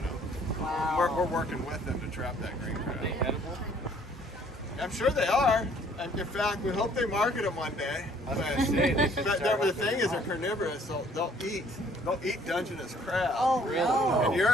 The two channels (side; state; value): both; normal; correlation 0.60